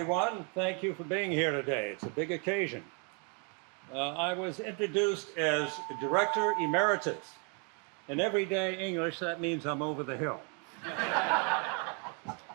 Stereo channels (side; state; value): left; quieter; 37.1 dB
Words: Thank you for being here today. It's a big occasion. I was introduced as Director Emeritus. In everyday English, that means I'm over the hill.